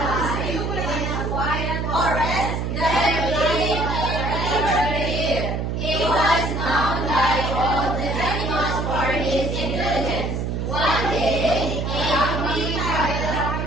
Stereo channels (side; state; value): right; noise; hum, 2 dB below the sound